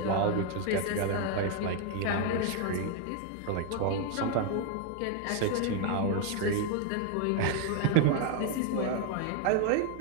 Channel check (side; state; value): both; different; correlation 0.01